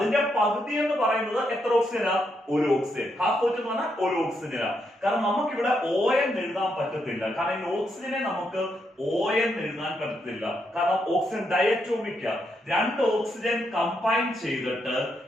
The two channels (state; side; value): normal; both; correlation 0.79